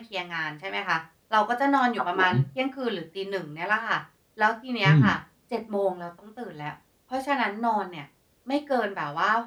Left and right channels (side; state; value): both; identical; correlation 1.00